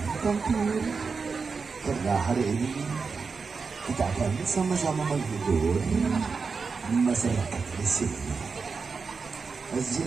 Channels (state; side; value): quieter; left; 4.9 dB